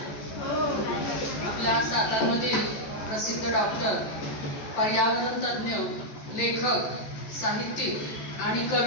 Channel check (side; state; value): right; late; 13 ms